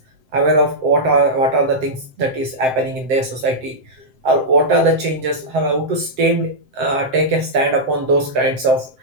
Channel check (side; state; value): left; late; 7.7 ms